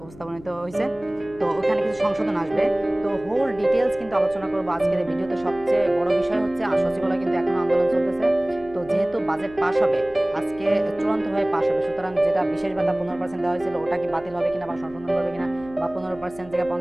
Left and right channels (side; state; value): left; noise; hum, 20 dB below the sound